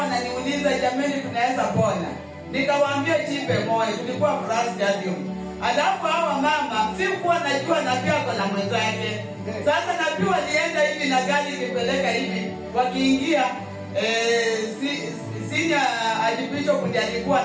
ananiuliza, jamani tunaweza pona? Nikawaambia jipe moyo, tulikuwa Afraha Stadium. Alafu hawa mama sikuwa najua nabii ako na mwenzake. Sasa nabii walienda hivi na gari ikipeleka hivi, wakiingia senior archbishop ndiye alikuwa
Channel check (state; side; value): identical; both; correlation 1.00